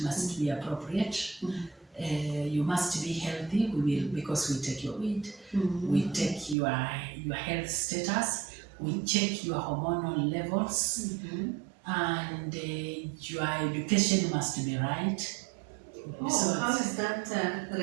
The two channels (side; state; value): left; drops out; at 6.6 s